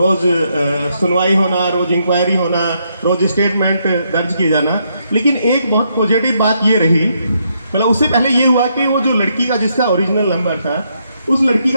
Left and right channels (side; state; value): both; inverted; correlation -0.76